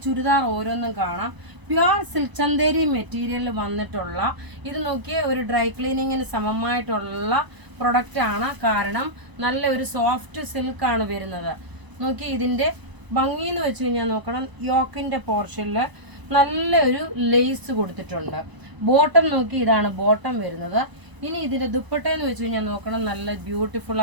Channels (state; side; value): late; left; 1.0 ms